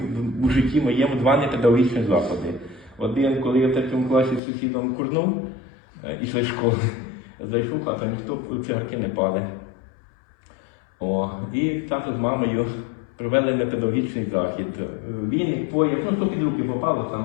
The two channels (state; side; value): drops out; right; at 4.4 s